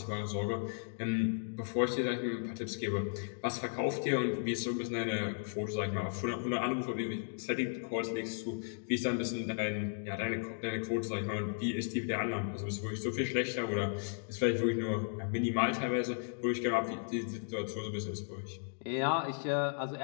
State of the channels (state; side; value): silent; right; digital silence